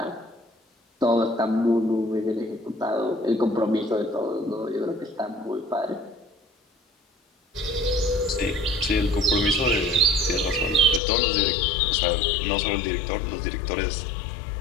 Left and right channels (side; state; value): right; drops out; at 11.0 s